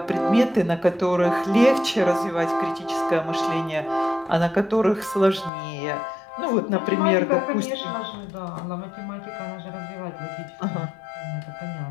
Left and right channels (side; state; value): right; drops out; at 5.5 s